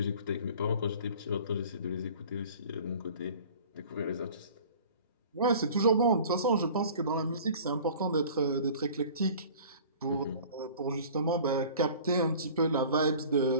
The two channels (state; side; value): inverted; both; correlation -0.45